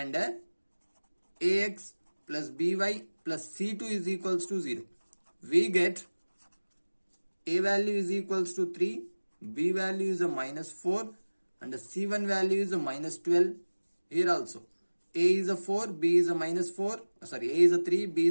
ax plus by plus c2 is equals to 0. We get a value is equals to 3, b value is a minus 4 and the c1 value is a minus 12. Here also a is a 4, b is a minus 4, sorry, a is a 3, b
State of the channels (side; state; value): both; inverted; correlation -1.00